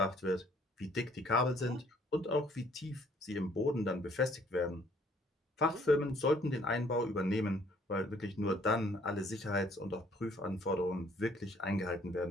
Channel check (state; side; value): normal; both; correlation 0.61